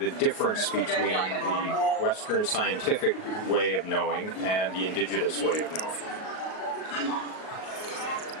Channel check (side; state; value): right; late; 38 ms